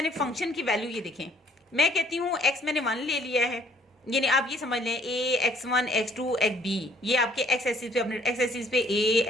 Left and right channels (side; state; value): both; normal; correlation 0.61